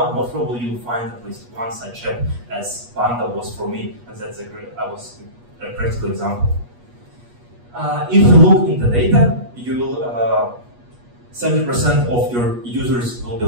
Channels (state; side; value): late; left; 8.3 ms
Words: most probably you'll find at least one such app, as Panda was for me, and that's a practical example. If you look in the data, you'll 70% of your users will be